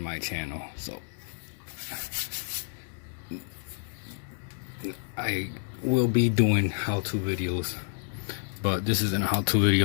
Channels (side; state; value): right; silent; digital silence